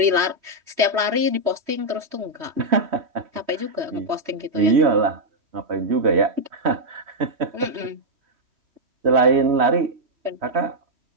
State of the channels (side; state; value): left; late; 3.1 ms